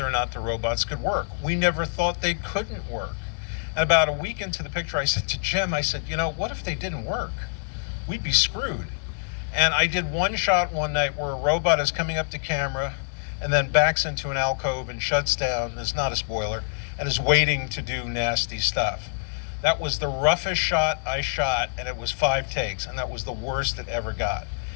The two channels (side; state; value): right; silent; digital silence